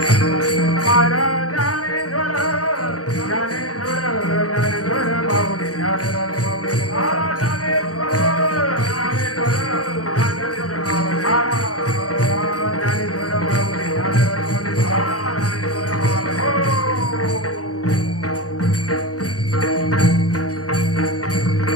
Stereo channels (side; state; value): right; late; 0.67 ms